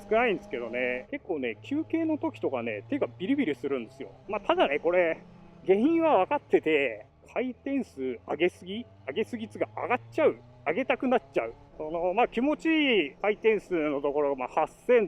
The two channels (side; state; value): both; identical; correlation 1.00